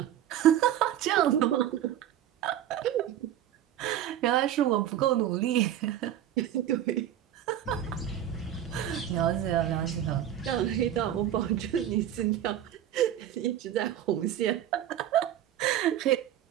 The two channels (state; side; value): quieter; left; 11.1 dB